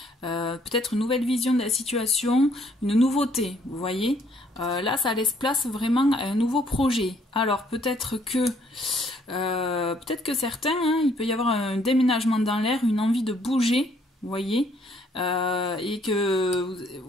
peut-être une nouvelle vision de la situation, une nouveauté, vous voyez. Là, ça laisse place vraiment à un nouveau projet. Alors, peut-être que certains, hein, il peut y avoir un déménagement dans l'air, une envie de bouger, vous voyez, et que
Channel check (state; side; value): normal; both; correlation 0.65